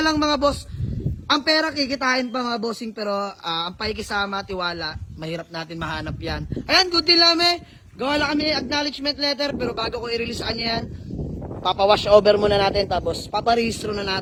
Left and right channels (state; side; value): identical; both; correlation 1.00